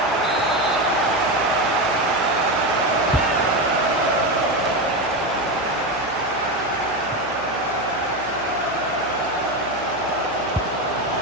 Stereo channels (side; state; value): right; noise; hum, 20 dB below the sound